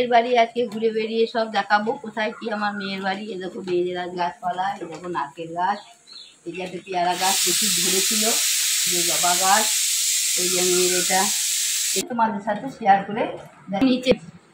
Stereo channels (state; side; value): identical; both; correlation 1.00